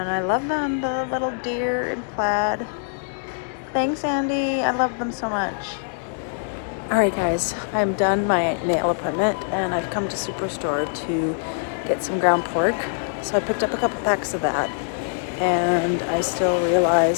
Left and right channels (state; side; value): silent; right; digital silence